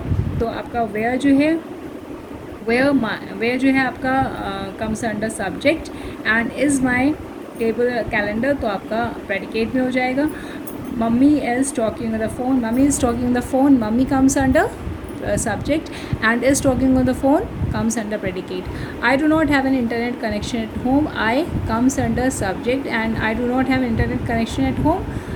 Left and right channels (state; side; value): identical; both; correlation 1.00